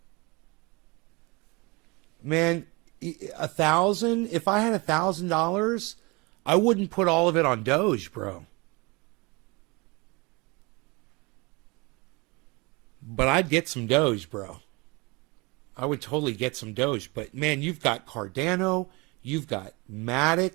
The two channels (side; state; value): left; quieter; 26.7 dB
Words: Man, 1,000. If I had $1,000, I wouldn't put all of it on Doge, bro. But I'd get some Doge, bro. I would totally get some Doge. But man, you've got Cardano, you've got Matic,